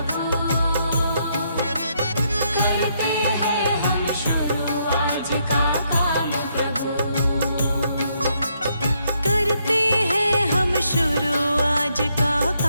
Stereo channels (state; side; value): inverted; both; correlation -0.75